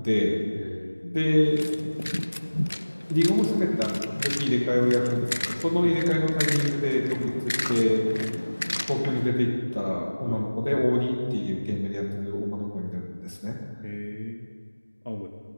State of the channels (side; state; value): both; inverted; correlation -1.00